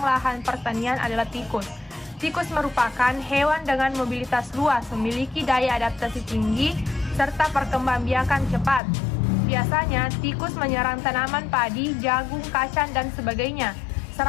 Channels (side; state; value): right; drops out; at 8.8 s